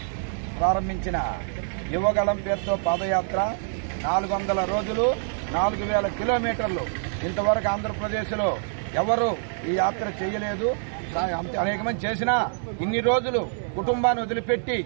ప్రారంభించిన యువగలం పేరుతో పాదయాత్ర 400 రోజులు 4000 కిలోమీటర్లు. ఇంతవరకు ఆంధ్రప్రదేశ్లో ఎవరు ఈ యాత్ర చేయలేదు. అనేక మంది చేసినా ఇన్ని రోజులు కుటుంబాన్ని వదిలిపెట్టి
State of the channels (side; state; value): left; silent; 59 dB below the other